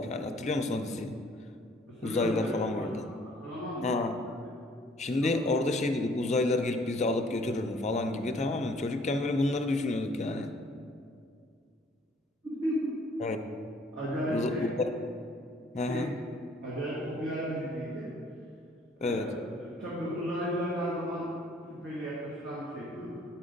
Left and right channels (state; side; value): normal; both; correlation 0.60